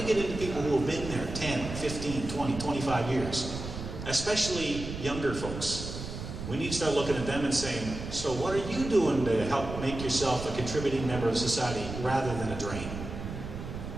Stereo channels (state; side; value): noise; right; rumble, 8 dB below the sound